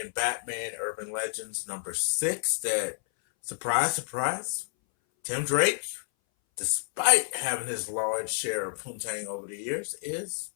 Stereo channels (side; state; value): right; silent; 58 dB below the other